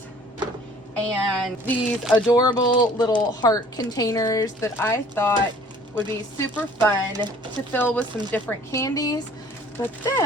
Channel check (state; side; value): normal; both; correlation 0.53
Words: and these adorable little heart containers that I thought would be super fun to fill with some different candies. But